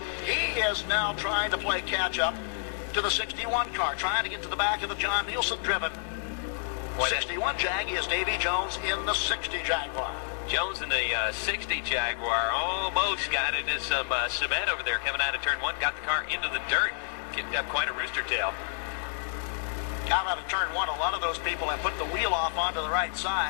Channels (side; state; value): right; silent; 57 dB below the other